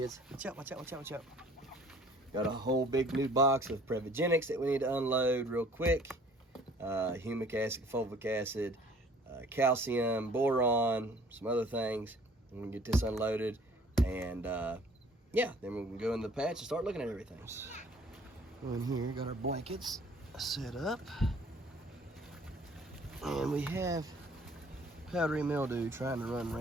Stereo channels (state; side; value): normal; both; correlation 0.54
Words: Watch out, watch out, watch out, watch out. Got a whole big new box of Prevogenics that we need to unload real quick. Humic acid, fulvic acid, calcium, boron, some other things. I'm gonna get this unloaded, and yeah, then we can go in the patch and start looking at everything. In here, got our blankets set up. And we have powdery mildew trying to run